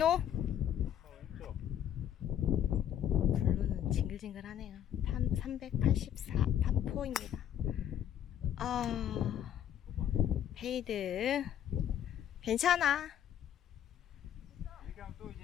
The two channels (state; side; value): quieter; right; 10.3 dB